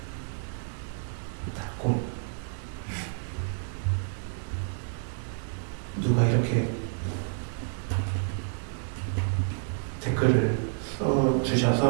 닫고 누가 이렇게 댓글을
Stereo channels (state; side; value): silent; left; digital silence